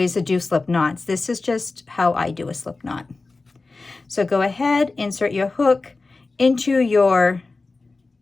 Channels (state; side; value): quieter; right; 3.7 dB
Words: to do slip knots. This is just how I do a slip knot. So go ahead, insert your hook into your